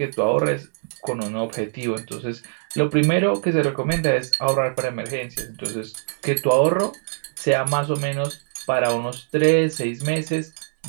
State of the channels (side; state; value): left; silent; digital silence